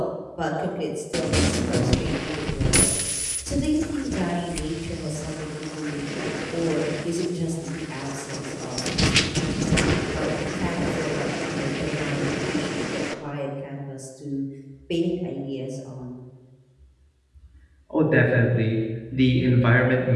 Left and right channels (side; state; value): both; identical; correlation 1.00